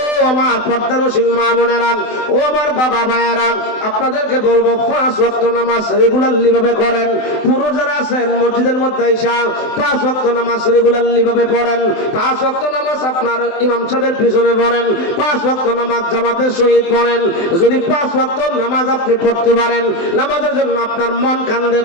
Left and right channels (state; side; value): late; right; 23 ms